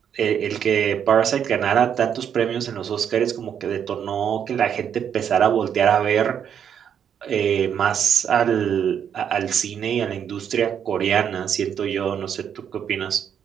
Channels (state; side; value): quieter; left; 8.4 dB